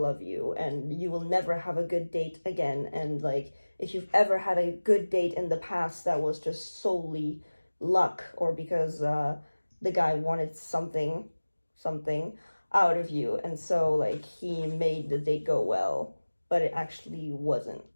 you, and you will never have a good date again. And like, if you've ever had a good date in the past, that was just solely luck, or because the guy wanted something out of you, and so like he made the date go well, but it actually wasn't.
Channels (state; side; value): inverted; both; correlation -1.00